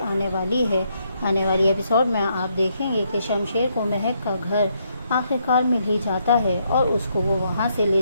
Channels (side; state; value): both; inverted; correlation -0.75